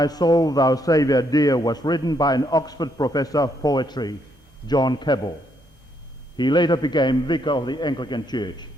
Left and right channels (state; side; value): normal; both; correlation 0.74